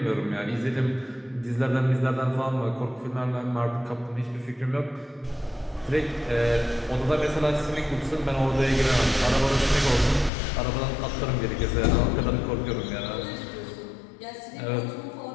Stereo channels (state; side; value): drops out; right; at 10.3 s